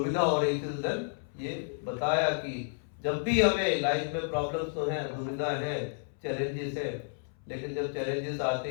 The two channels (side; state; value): right; silent; 57 dB below the other